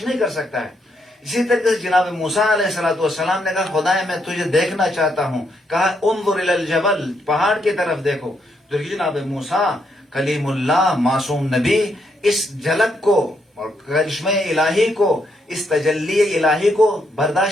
نہیں کر سکتا ہے. اسی طریقے سے جناب موسیٰ علیہ السلام نے کہا خدا میں تجھے دیکھنا چاہتا ہوں. کہا انظر الی الجبل، پہاڑ کی طرف دیکھو. تو جناب موسیٰ کلیم اللہ، معصوم نبی، اس جھلک کو اور کرشمہ الہی کو، اس تجلی الہی کو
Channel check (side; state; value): both; normal; correlation 0.76